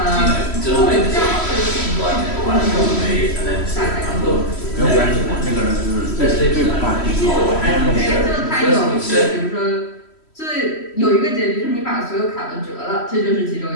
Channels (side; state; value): right; late; 3.1 ms